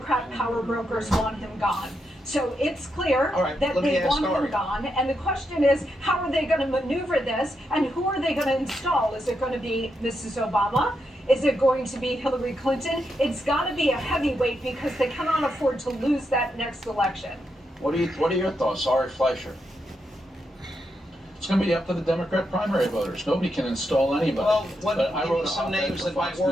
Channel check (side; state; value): both; normal; correlation 0.83